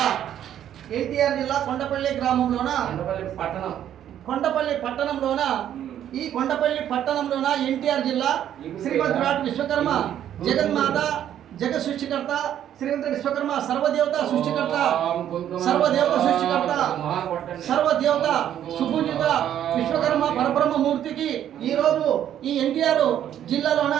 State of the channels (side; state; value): left; quieter; 10.6 dB